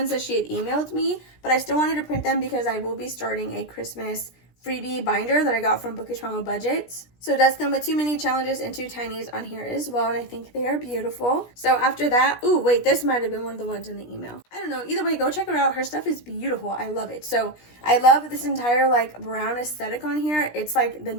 that she had emailed me, but I still wanted to print them because I will be starting a Christmas freebie binder that I got from bookishmammabudgets. So it does come with 2 mini challenges and 2 tinies on here as well, and I think they are beautiful. So after that, ooh, wait, this might have been one of the ones in the email. I don't know. Either way, go check her out. Her stuff is beautiful. I love it. So I love this entire like brown aesthetic on here. It's like the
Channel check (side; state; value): right; late; 17 ms